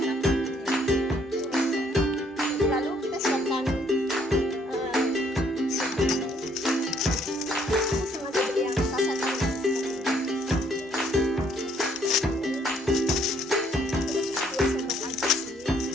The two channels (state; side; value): normal; both; correlation 0.66